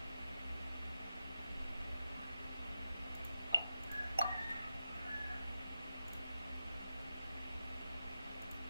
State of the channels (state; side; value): inverted; both; correlation -0.91